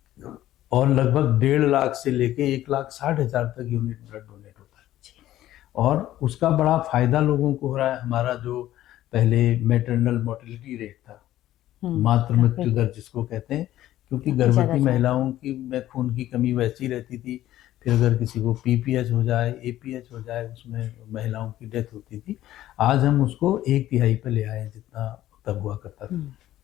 और लगभग 1.5 लाख से लेके 1,60,000 तक यूनिट ब्लड डोनेट होता है। और उसका बड़ा फायदा लोगों को हो रहा है। हमारा जो पहले मैटरनल मोर्टेलिटी रेट था, मातृ मृत्यु दर जिसको कहते हैं, क्योंकि गर्भवती महिलाओं की में खून की कमी वैसी रहती थी, फिर अगर किसी को पीपीएच हो जाए, एपीएच हो जाए, उसमें महिलाओं की डेथ होती थी। आज हम उसको 1/3 पे ले आए, जितना तब हुआ करता था।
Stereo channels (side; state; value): right; quieter; 13.8 dB